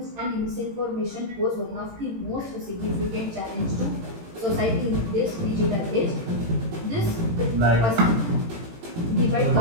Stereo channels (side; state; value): left; late; 18 ms